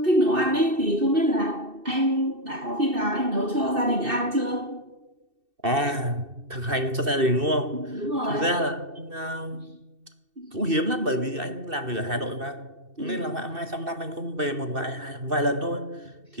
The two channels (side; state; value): left; late; 2.6 ms